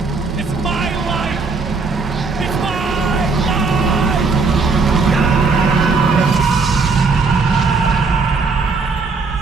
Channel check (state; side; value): quieter; left; 4.3 dB